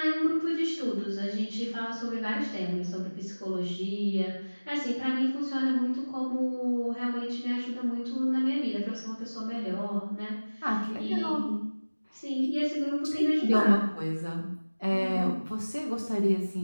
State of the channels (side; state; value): both; inverted; correlation -1.00